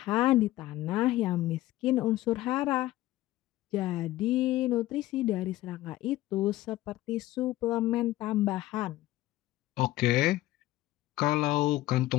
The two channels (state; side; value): quieter; right; 16.2 dB